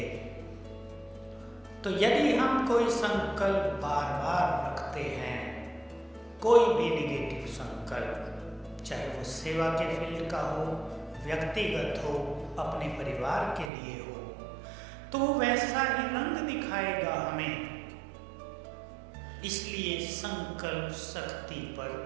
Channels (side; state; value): left; drops out; at 13.7 s